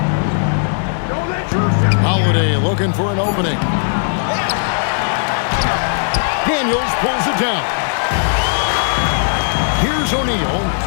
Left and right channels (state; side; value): silent; right; digital silence